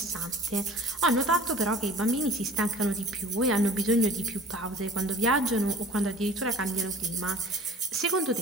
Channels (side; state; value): both; normal; correlation 0.45